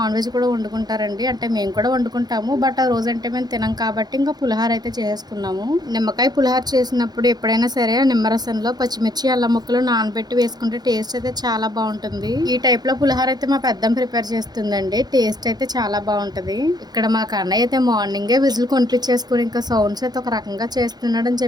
వెజ్ కూడా వండుకుంటారండి. అంటే మేము కూడా వండుకుంటాము, బట్ ఆ రోజు అంటే మేము తినం కాబట్టి ఇంకా పులిహార అయితే చేసుకున్నాము. నిమ్మకాయ పులిహార చేసినప్పుడు ఎప్పుడైనా సరే నిమ్మరసంలో పచ్చిమిర్చి అల్లం ముక్కలు నానబెట్టి వేసుకుంటే టేస్ట్ అయితే చాలా బాగుంటుంది. ఈ టైప్ లో పులిహార అయితే మా పెద్దమ్మ ప్రిపేర్ చేస్తుందండి. టేస్ట్ అయితే చాలా బాగుంటది. ఇక్కడ మా కన్నయ్య అయితే మార్నింగే విజిల్ కొనిపించేసుకుని ఇంకా సౌండ్స్ అయితే ఒక రకంగా చేస్తున్నాడని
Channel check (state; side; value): late; left; 0.19 ms